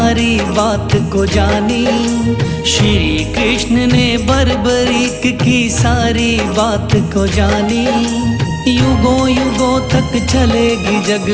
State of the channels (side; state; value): both; identical; correlation 1.00